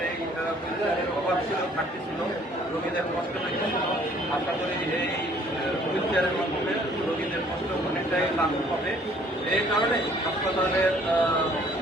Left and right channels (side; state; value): both; normal; correlation 0.58